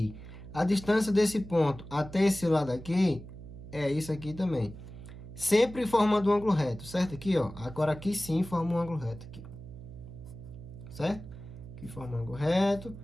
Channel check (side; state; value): right; noise; hum, 14 dB below the sound